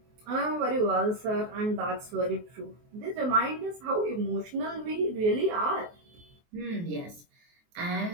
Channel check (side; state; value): left; late; 23 ms